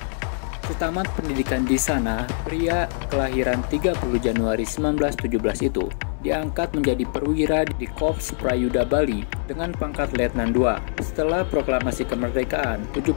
Setamat pendidikan di sana, pria kelahiran 30 Januari 1917 itu diangkat menjadi perwira di Korps Prayuda Bali dengan pangkat Letnan II. Setelah proklamasi kemerdekaan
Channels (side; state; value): right; silent; digital silence